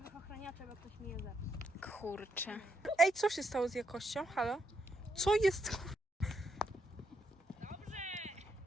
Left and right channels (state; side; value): normal; both; correlation 0.78